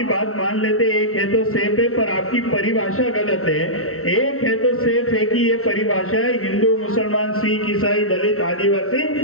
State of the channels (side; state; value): right; late; 0.63 ms